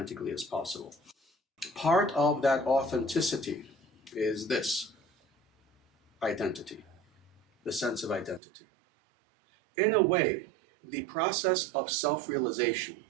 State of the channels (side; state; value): left; drops out; at 8.4 s